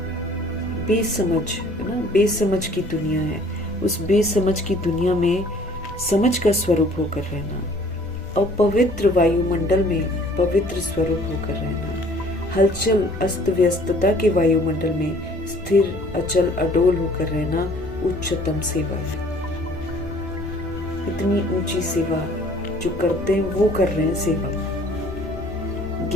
बेसमझ है ना, बेसमझ की दुनिया है, उस बेसमझ की दुनिया में समझ का स्वरूप होकर रहना, अपवित्र वायुमंडल में पवित्र स्वरूप होकर रहना, हलचल अस्त व्यस्तता के वायुमंडल में स्थिर अचल अडोल होकर रहना उच्चतम सेवा है। इतनी ऊंची सेवा जो करते हैं वो कर रहे हैं सेवा।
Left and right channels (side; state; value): left; noise; rumble, 19 dB below the sound